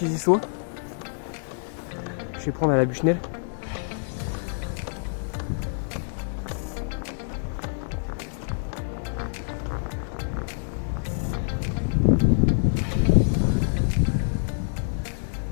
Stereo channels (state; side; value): silent; right; digital silence